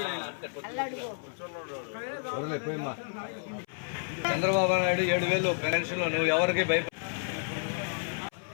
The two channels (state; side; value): silent; right; 57 dB below the other